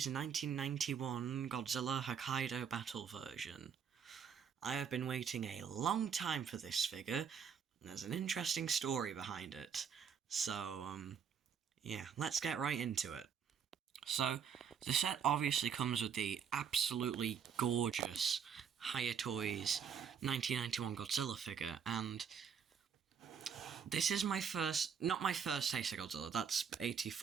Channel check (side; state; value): left; quieter; 7.2 dB